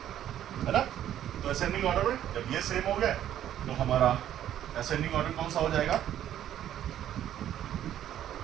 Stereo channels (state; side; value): quieter; left; 11.3 dB